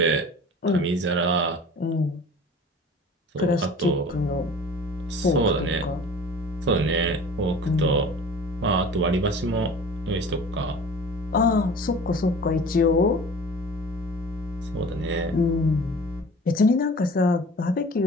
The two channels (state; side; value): normal; both; correlation 0.42